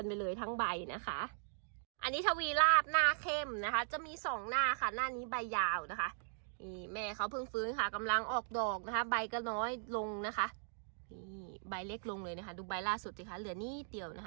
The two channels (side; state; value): left; silent; digital silence